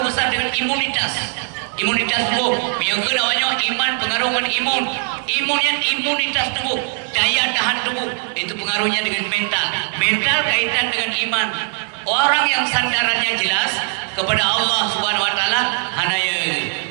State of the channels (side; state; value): left; silent; 56 dB below the other